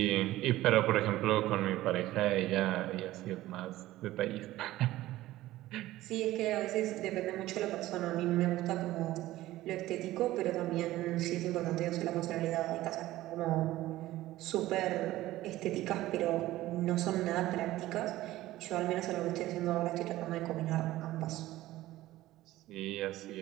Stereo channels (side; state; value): left; quieter; 16.0 dB